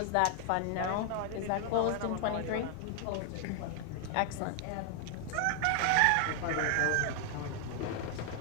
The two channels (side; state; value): both; different; correlation 0.00